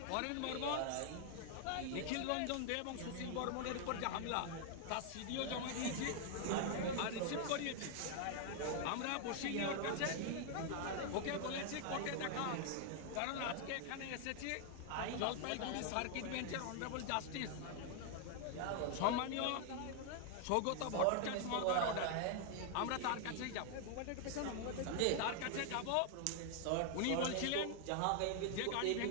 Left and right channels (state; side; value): different; both; correlation 0.00